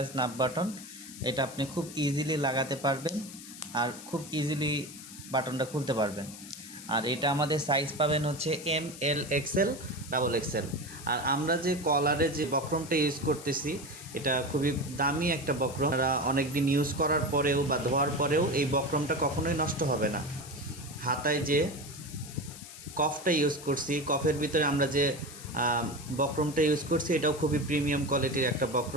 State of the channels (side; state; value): left; noise; hiss, 14 dB below the sound